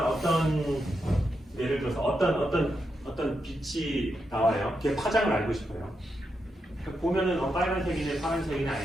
어떤 예를 들어서 어떤 빛이 나와요. 그게 파장을 알고 싶어요. 보면은 빨간색이네 파란색이네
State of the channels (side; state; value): both; normal; correlation 0.85